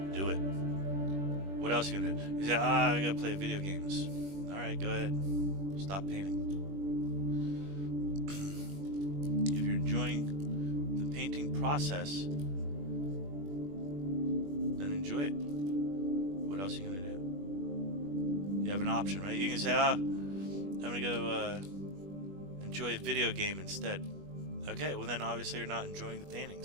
do it. What else are you gonna do? You say, I gotta play video games. Alright, go ahead. Stop painting. If you're enjoying the painting process, then enjoy it. What else are you gonna do? You have an option, right? You can say, I'm gonna go enjoy a video game instead. Okay, well then obviously you're not enjoying the painting,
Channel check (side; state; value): left; late; 21 ms